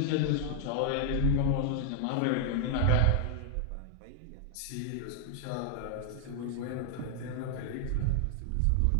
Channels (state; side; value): different; both; correlation 0.00